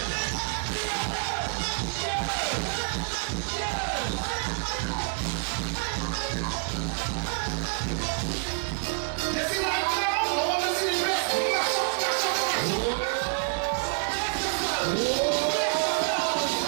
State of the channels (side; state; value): left; silent; 56 dB below the other